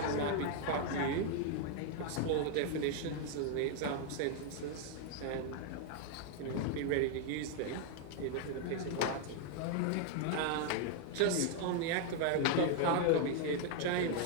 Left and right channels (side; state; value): both; different; correlation 0.00